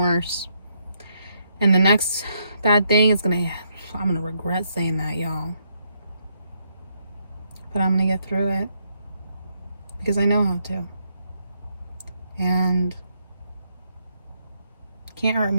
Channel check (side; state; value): both; inverted; correlation -0.76